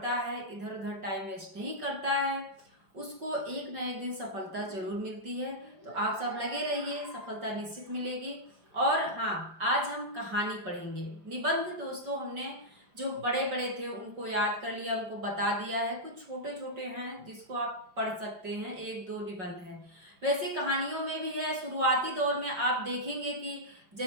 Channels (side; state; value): left; late; 5.4 ms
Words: है, इधर उधर टाइम वेस्ट नहीं करता है, उसको एक न एक दिन सफलता जरूर मिलती है। तो आप सब लगे रहिए, सफलता निश्चित मिलेगी। और हाँ, आज हम कहानी पढ़ेंगे। निबंध दोस्तों हमने जो बड़े बड़े थे उनको याद कर लिया, उनको बता दिया है। कुछ छोटे छोटे हैं जिसको आप पढ़ सकते हैं, एक दो निबंध हैं। वैसे कहानियों में भी है। शुरुआती दौर में आप देखेंगे कि